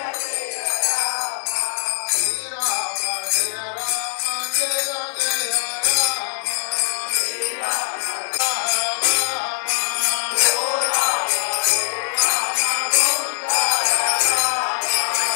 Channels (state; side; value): silent; right; 65 dB below the other